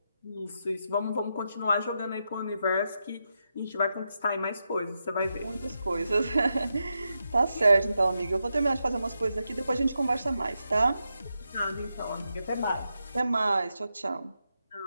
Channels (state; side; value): inverted; both; correlation -0.86